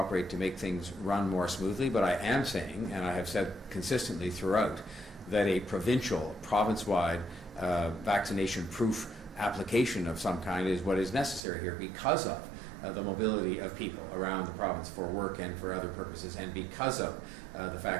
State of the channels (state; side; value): drops out; left; at 11.4 s